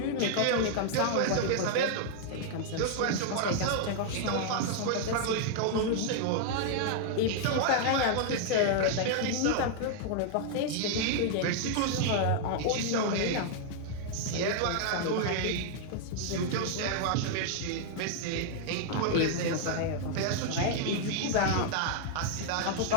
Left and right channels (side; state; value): both; different; correlation 0.00